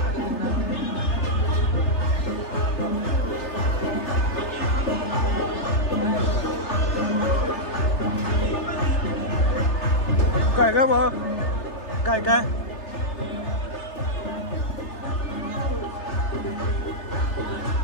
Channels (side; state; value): right; late; 3.3 ms